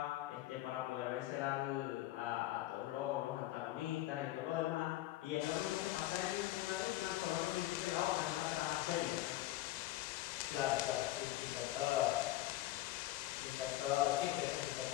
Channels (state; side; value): quieter; right; 15.8 dB